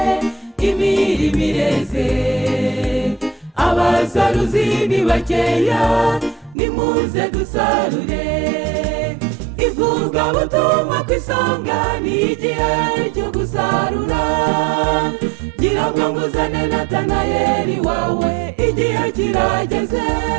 imirimo ireze. Abasaruzi ni bakeya, nimuze dusarure. Ivugabutumwa ku isonga, ni igihe cyo gusarura. Gira bwangu uzane Natanayeli wawe, igihe kirageze.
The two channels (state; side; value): drops out; left; at 6.6 s